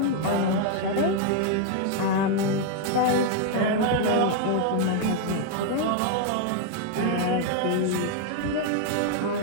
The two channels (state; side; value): different; both; correlation 0.00